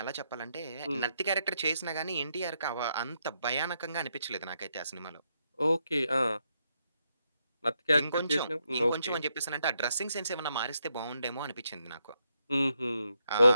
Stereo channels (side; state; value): both; inverted; correlation -0.80